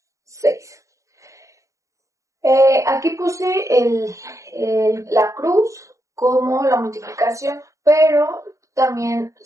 6. Aquí puse la cruz como la multiplicación, pero también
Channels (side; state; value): left; late; 0.15 ms